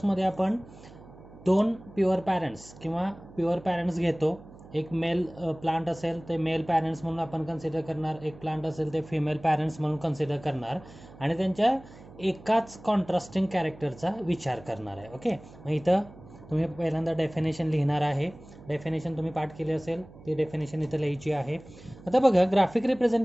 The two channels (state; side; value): noise; right; hum, 20 dB below the sound